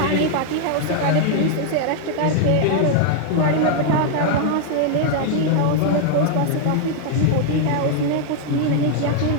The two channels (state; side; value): different; both; correlation -0.01